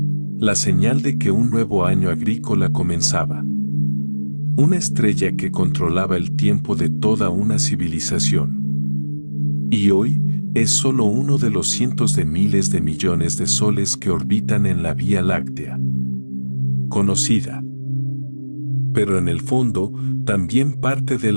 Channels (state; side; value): inverted; both; correlation -1.00